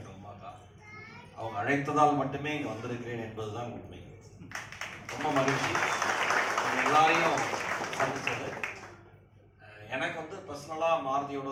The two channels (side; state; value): both; identical; correlation 1.00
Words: உமா அக்கா. அவங்க அழைத்ததால் மட்டுமே இங்கே வந்திருக்கிறேன் என்பதுதான் உண்மை. ரொம்ப மகிழ்ச்சி எல்லாரையும் சந்திச்சது. எனக்கு வந்து பர்சனலாக மாருதியோட